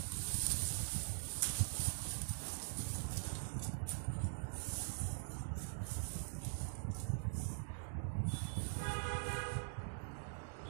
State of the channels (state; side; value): silent; left; digital silence